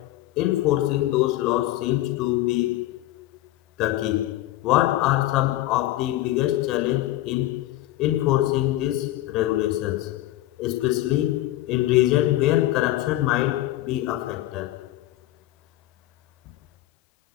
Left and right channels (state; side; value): quieter; right; 15.7 dB